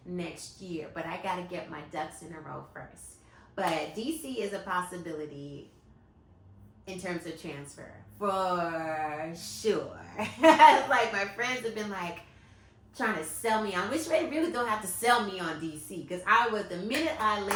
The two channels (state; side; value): identical; both; correlation 1.00